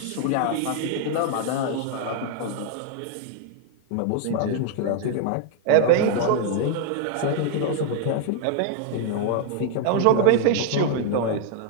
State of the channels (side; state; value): both; different; correlation 0.00